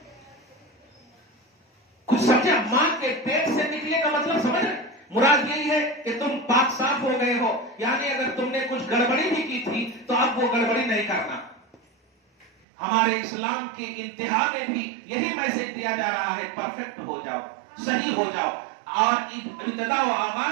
کچھ سمجھا؟ ماں کے پیٹ سے نکلے کا مطلب سمجھ رہے؟ مراد یہی ہے کہ تم پاک صاف ہو گئے ہو، یعنی اگر تم نے کچھ گڑبڑی بھی کی تھی تو اب وہ گڑبڑی نہیں کرنا. ہمارے اسلام کی انتہا میں بھی یہی میسج دیا جا رہا ہے، پرفیکٹ ہو جاؤ، صحیح ہو جاؤ. اور ابتدا و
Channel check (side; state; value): left; drops out; at 12.5 s